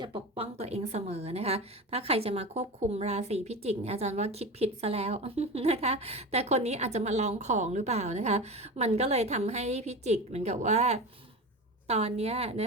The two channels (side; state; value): both; normal; correlation 0.27